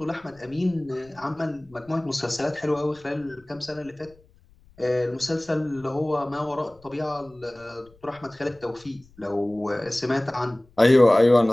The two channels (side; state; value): left; noise; rumble, 29 dB below the sound